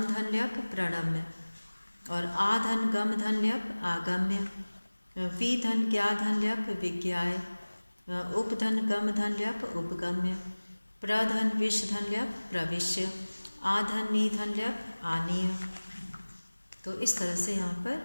धन ल्यप प्रणम्य, और आ धन गम धन ल्यप आगम्य। वी धन ज्ञा धन ल्यप विज्ञाय, उपधन गम धन ल्यप उपगम्य, प्रधन विष धन ल्यप प्रविश्य, आधन नी धन ल्यप आनीय। तो इस तरह से यहाँ पर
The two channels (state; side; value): inverted; both; correlation -1.00